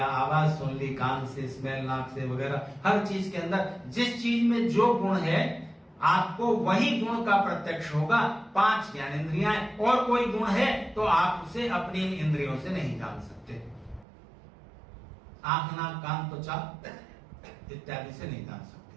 आवाज सुन ली, कान से स्मेल, नाक से वगैरह, हर चीज के अंदर जिस चीज में जो गुण है आपको वही गुण का प्रत्यक्ष होगा। 5 ज्ञानेंद्रियां और कोई गुण है तो आप उसे अपनी इंद्रियों से नहीं जान सकते। आंख नाक कान त्वचा इत्यादि से नहीं जान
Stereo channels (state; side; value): drops out; left; at 14.1 s